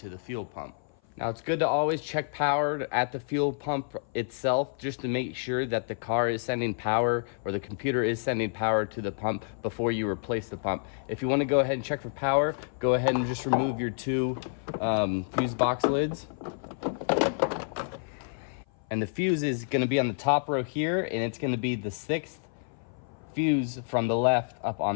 the fuel pump. Now it's good to always check power at the fuel pump itself just to make sure that the car is sending power or the computer is sending power to the pump before you replace the pump. If you want to go ahead and check for power, go ahead and just remove your two fuse box lids. And the fuse is going to be on the top row here, and it's going to be the 6th fuse from the left up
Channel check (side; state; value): right; silent; 56 dB below the other